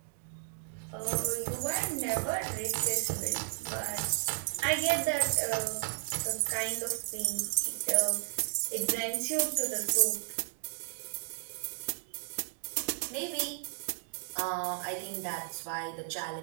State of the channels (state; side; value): silent; left; digital silence